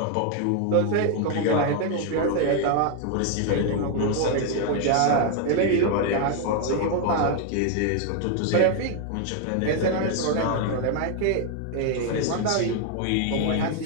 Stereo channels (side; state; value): both; different; correlation 0.00